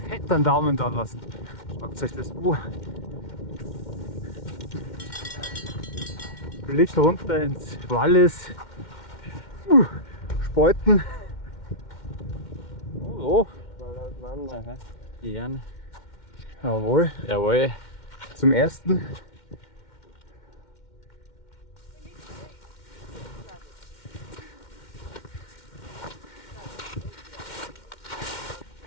fett einen Daumen da lassen. Schaut euch das an. Blick runter ins Wallis. Speuten. Oh, Gern. jawohl. Jawohl. Zum ersten.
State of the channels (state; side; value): late; right; 2.1 ms